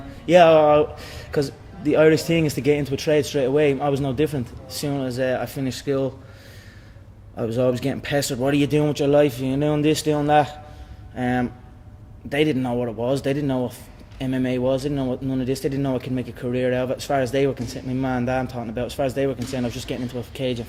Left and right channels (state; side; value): identical; both; correlation 1.00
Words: Yeah, because the Irish thing is to get into a trade straight away. I was no different. As soon as I finished school, I was always getting pestered. What are you doing with your life? You're doing this, doing that. They didn't know what it was. They didn't know what MMA was. They didn't know what none of this. They didn't know I could make a career out of it. As far as they were concerned, my man and dad I'm talking about, as far as they were concerned, I was just getting into a cage and